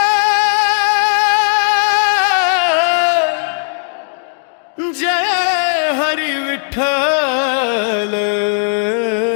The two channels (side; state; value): right; silent; digital silence